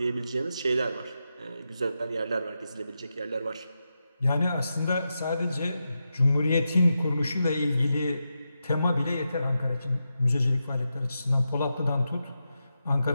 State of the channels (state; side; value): inverted; both; correlation -0.88